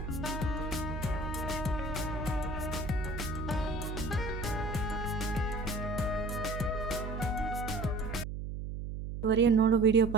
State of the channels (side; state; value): right; noise; hum, 5 dB below the sound